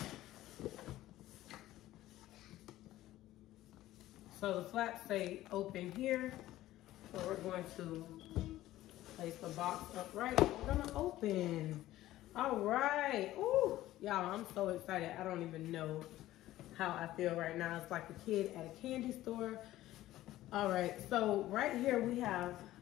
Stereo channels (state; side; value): quieter; right; 15.1 dB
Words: So the flaps say open here. So we're going to place the box upright. We're gonna open. All right, ooh, y'all, I'm so excited. I don't even know how I feel right now. It's like a kid at a candy store. All right, so right here we have